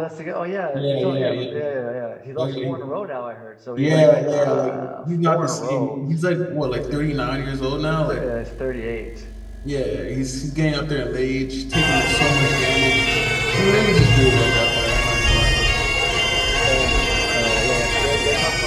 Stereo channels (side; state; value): both; identical; correlation 1.00